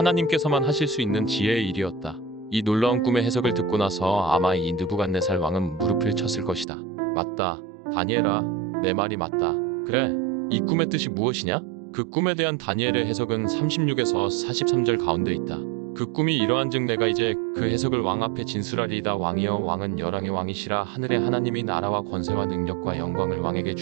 하실 수 있는 지혜의 일이었다. 이 놀라운 꿈의 해석을 듣고 나서 아마 이 느부갓네살 왕은 무릎을 쳤을 것이다. 맞다. 다니엘아, 내 말이 맞다. 그래, 이 꿈의 뜻이 무엇이냐? 그 꿈에 대한 다니엘의 해석은 36에서 43절 가운데 있다. 그 꿈이 이러한즉 내가 이제 그 해석을 왕 앞에 진술하리이다. 왕이여 왕은 열왕의 왕이시라. 하늘의 하나님이 나라와 권세와 능력과 영광을 왕에게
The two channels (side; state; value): left; drops out; at 6.7 s